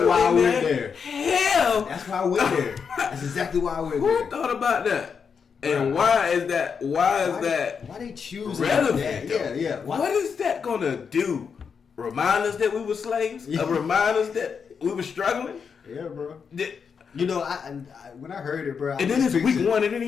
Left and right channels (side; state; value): right; quieter; 6.2 dB